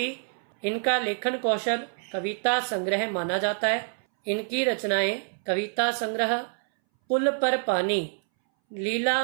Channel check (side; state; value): left; silent; 60 dB below the other